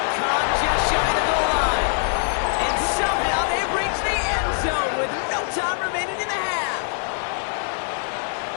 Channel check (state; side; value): silent; right; 60 dB below the other